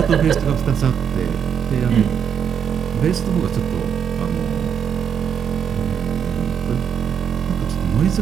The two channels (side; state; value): left; quieter; 7.9 dB